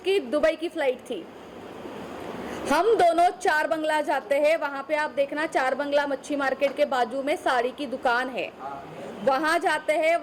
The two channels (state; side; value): identical; both; correlation 1.00